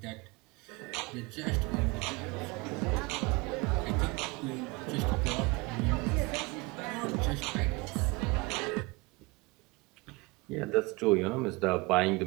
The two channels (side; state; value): left; quieter; 25.2 dB